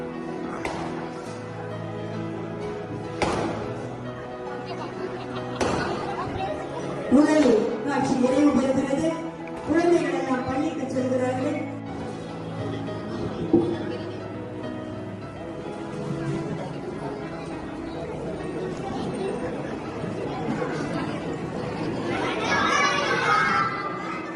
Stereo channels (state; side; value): identical; both; correlation 1.00